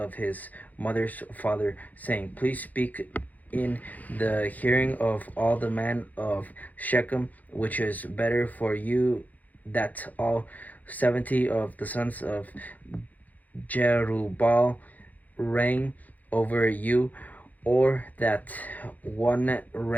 his mother's father, saying, Please speak in the hearing of all the men of Shechem, which is better for you that all 70 of the sons of Jerubbaal reign over you, or that one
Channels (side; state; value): right; late; 0.080 ms